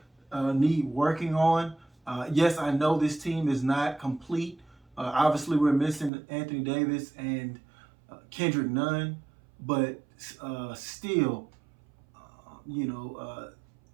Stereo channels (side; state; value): left; drops out; at 6.1 s